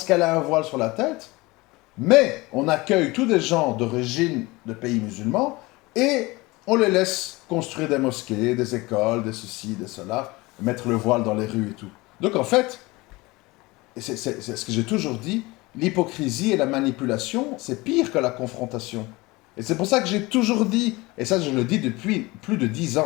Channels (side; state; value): right; quieter; 22.3 dB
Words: qu'elle a un voile sur la tête. Mais on accueille tous des gens d'origine de pays musulmans et on les laisse construire des mosquées, des écoles, des ceci, des cela, mettre le voile dans les rues et tout. Donc en fait, c'est ce que j'ai toujours dit, l'hypocrisie et la manipulation, c'est pire que la confrontation. Et c'est pour ça que j'ai toujours dit, et ça je le dis depuis plus de 10